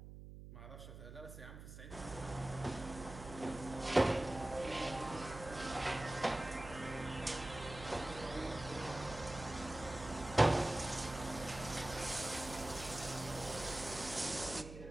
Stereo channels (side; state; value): right; noise; hum, 12 dB below the sound